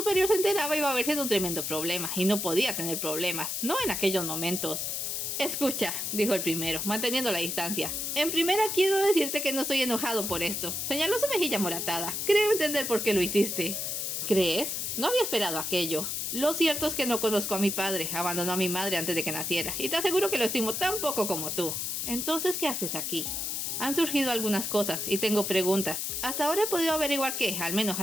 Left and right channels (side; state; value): left; noise; hiss, 2 dB below the sound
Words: se enteraba iba a verse en un tremendo problema, y no podía tener problemas, no en aquellos momentos. Escucha, dijo el primero, manteniendo la distancia. En primera quiero decirte que no estoy enojado por esto. Señaló su mejilla moratada. Creo entender por qué lo hiciste. ¿Crees? No había esperado aquello. Lo cierto es que no conozco a mi padre, abandonó a mi madre antes de que naciera, y te aseguro que lo estimo tan poco como tú. Entonces, ¿qué haces aquí? Han surgido algunas cosas y tengo preguntas. Hasta ahora he podido averiguar que, al menos